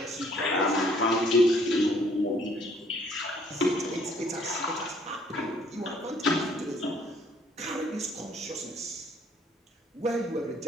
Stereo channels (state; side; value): normal; both; correlation 0.62